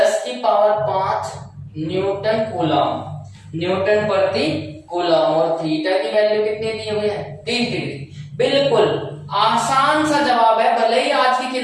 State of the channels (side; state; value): both; identical; correlation 1.00